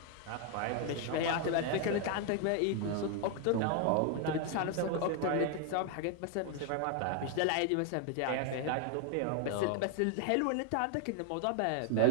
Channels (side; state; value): both; different; correlation 0.00